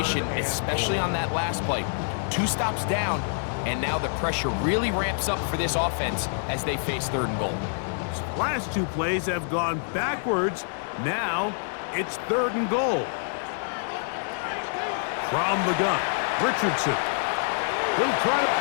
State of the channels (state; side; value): silent; right; digital silence